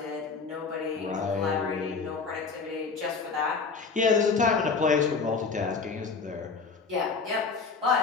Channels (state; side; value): quieter; right; 4.8 dB